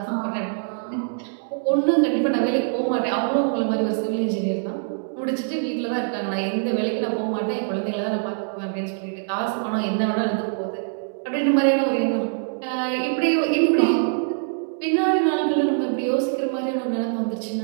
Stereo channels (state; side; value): silent; left; digital silence